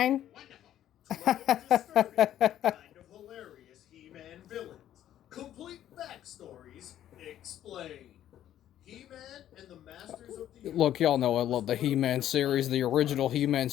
Kind of hilarious He-Man villains. Complete backstories explained. He-Man and the Masters of the Universe. Look, y'all know I love the He-Man series, the original He-Man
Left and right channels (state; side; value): quieter; right; 11.6 dB